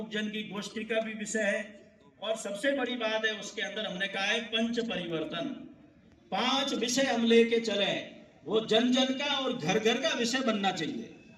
जन की गोष्ठी का भी विषय है और सबसे बड़ी बात है उसके अंदर हमने कहा है पंच परिवर्तन। 5 विषय हम लेके चले, वो जन जन का और घर घर का विषय बनना चाहिए।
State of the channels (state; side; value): identical; both; correlation 1.00